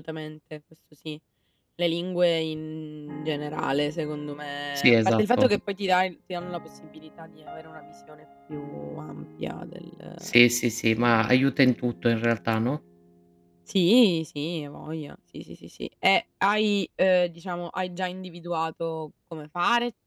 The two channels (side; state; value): both; identical; correlation 1.00